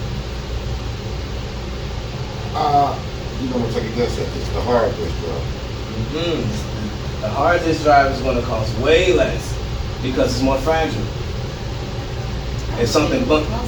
You gonna take a guess at this? The hard disk drive. The hard disk drive is going to cost way less because it's more fragile. It's something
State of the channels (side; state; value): both; identical; correlation 1.00